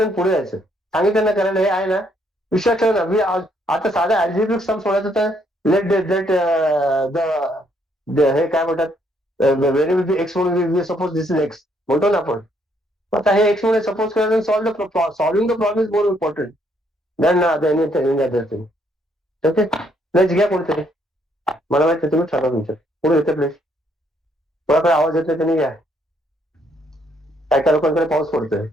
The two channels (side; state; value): both; normal; correlation 0.70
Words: पुढे जायचं. सांगितलं ना करायला, हे आहे ना विश्वास ठेव ना. मी आता साधा अल्जेब्रिक सम सोडायचं तर लेट हे काय म्हणतात, व्हेरी एक्स म्हणून सपोज दिस इज एक्स म्हणतो ना आपण. आता हे एक्स म्हणून सपोज करायचं, solving the problem is more important than anything other thing. Okay, place घ्या कोणतरी. मला माहिती तुम्ही ठरवा तुमच्या पुढे येते प्लेस. कोणाकडे आवाज येतोय त्यांनी घ्या. काय काय लोकांकडे पाऊस पडतोय.